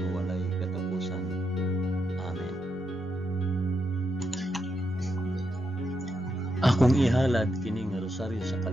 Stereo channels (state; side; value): normal; both; correlation 0.82